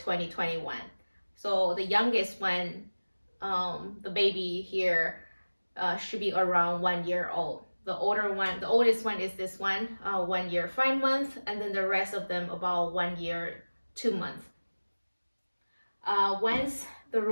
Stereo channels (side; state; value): both; inverted; correlation -1.00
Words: So the youngest one, the baby here, should be around 1 year old. The oldest one is this one, 1 year 5 months, and then the rest of them about 1 year 2 months. Once the